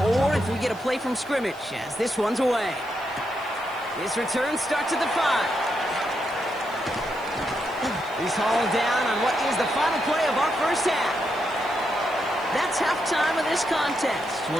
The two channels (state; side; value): noise; right; hiss, 25 dB below the sound